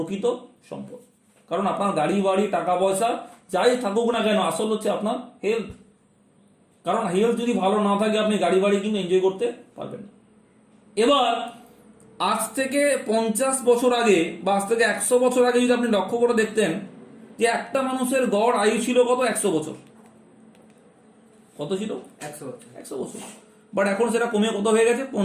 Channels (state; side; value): identical; both; correlation 1.00